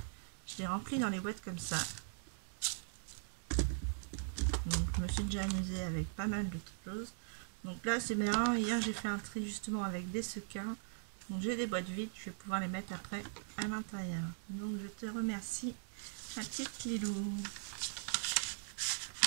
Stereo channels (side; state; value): left; silent; digital silence